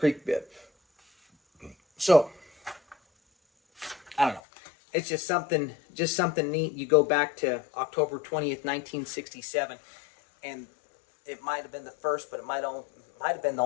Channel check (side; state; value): right; drops out; at 4.4 s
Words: bed. So, I don't know. It's just something neat. You go back to October 20th, 1967, and it might have been the first, but it might have been the